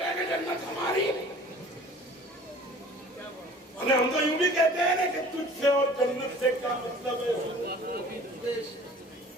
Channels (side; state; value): both; normal; correlation 0.47